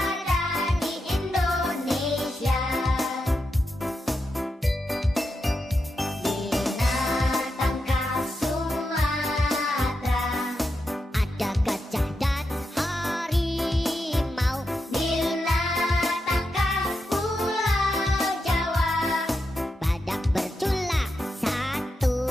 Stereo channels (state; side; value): normal; both; correlation 0.86